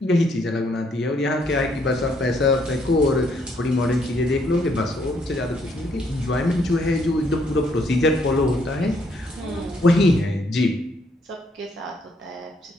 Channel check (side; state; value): both; normal; correlation 0.70